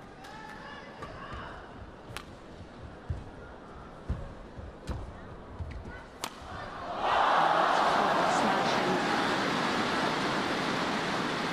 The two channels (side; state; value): both; identical; correlation 1.00